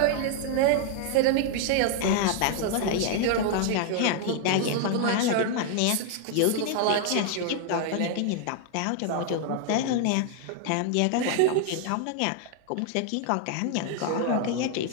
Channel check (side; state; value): both; different; correlation 0.00